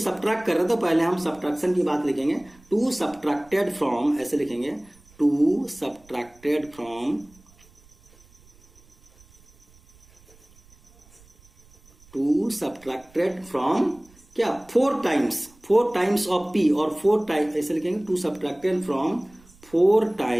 कर रहे हैं तो पहले हम सब्ट्रैक्शन की बात लिखेंगे। 2 सब्ट्रैक्टेड फ्रॉम ऐसे लिखेंगे 2 सब्ट्रैक्टेड फ्रॉम क्या? 4 टाइम्स ऑफ p और 4 टाइम्स ऐसे लिखेंगे 2 subtracted from 4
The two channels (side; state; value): right; noise; rumble, 28 dB below the sound